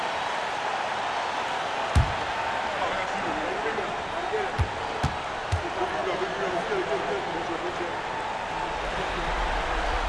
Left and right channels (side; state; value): both; identical; correlation 1.00